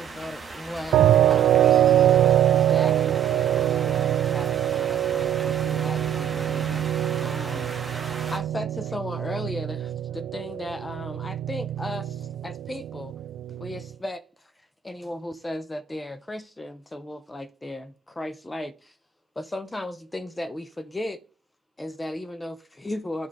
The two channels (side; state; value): left; quieter; 8.8 dB